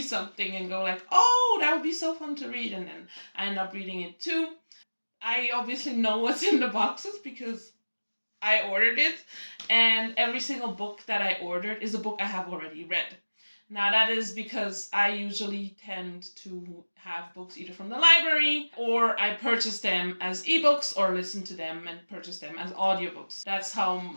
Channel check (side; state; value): both; inverted; correlation -1.00